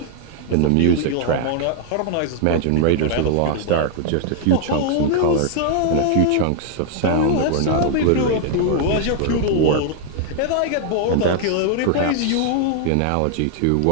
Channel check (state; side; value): different; both; correlation 0.00